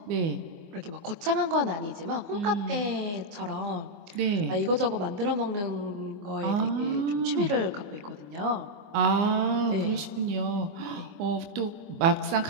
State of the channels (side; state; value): left; late; 24 ms